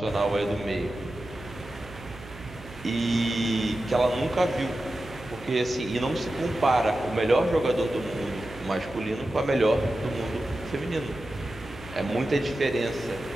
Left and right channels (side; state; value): right; noise; hum, 17 dB below the sound